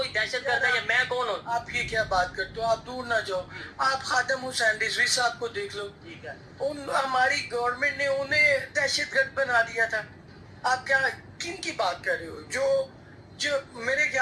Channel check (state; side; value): identical; both; correlation 1.00